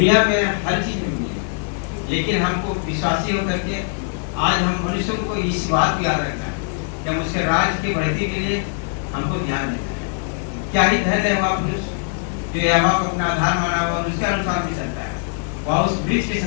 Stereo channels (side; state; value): right; silent; 56 dB below the other